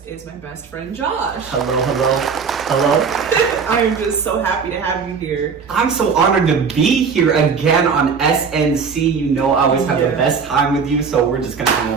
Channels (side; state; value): left; quieter; 5.8 dB